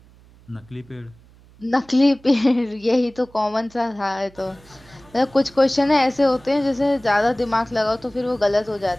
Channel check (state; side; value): noise; right; hum, 26 dB below the sound